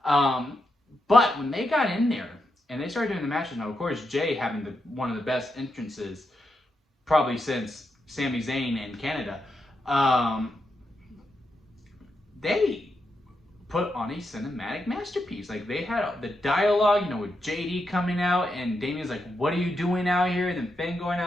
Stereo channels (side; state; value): both; normal; correlation 0.84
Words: But when they got in there and they started doing the matches, now, of course, Jey having one of the best entrances probably since Sami Zayn in Canada, they put on a cinematic masterpiece. Like, they had the dialogue, you know, with JD coming out, and Damien's like, what are you doing out here? And then Finn going